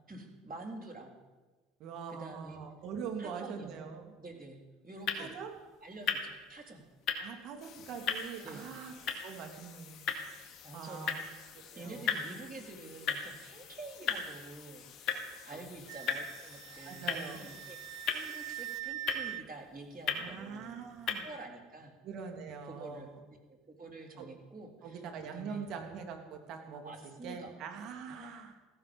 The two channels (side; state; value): both; normal; correlation 0.38